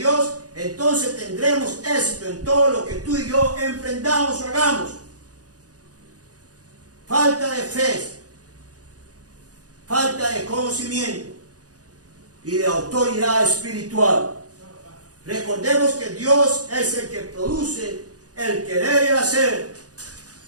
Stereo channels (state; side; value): late; left; 0.68 ms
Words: entonces tendremos éxito en todo lo que tú y yo emprendamos o hagamos. Falta de fe, falta de conocimiento y de autoridad espiritual. Recordemos que Dios es el que produce el querer y el hacer